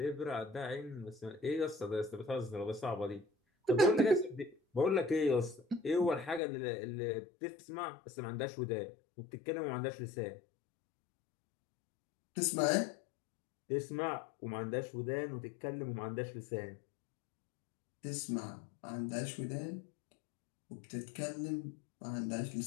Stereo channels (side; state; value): right; drops out; at 6.4 s